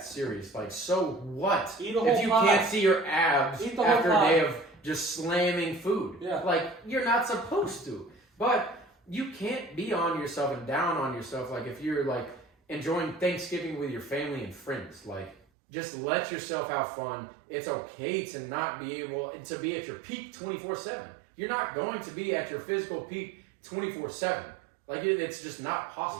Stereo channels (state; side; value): drops out; left; at 15.4 s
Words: serious. Like so what? If you can't see your abs after a day of just slamming food. Yeah. Like you're not supposed to. But you can't be on yourself and down on yourself. Like if you're like enjoying Thanksgiving with your family and friends, like just let yourself have fun. It's okay to not be able to be at your peak 24/7. You're not going to be at your physical peak 24/7. Like it's just not